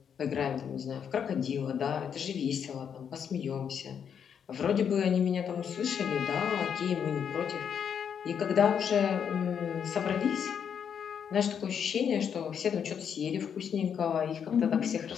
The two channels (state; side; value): quieter; right; 7.7 dB